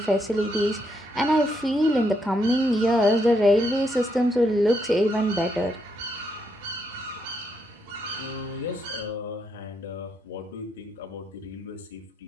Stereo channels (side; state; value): both; normal; correlation 0.77